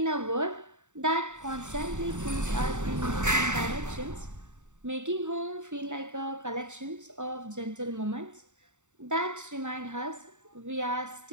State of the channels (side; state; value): left; late; 0.84 ms